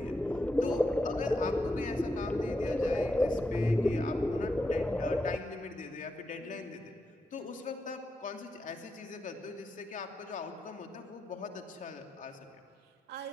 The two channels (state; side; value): normal; both; correlation 0.86